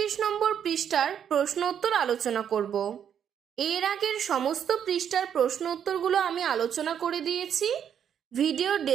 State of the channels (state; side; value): quieter; left; 8.7 dB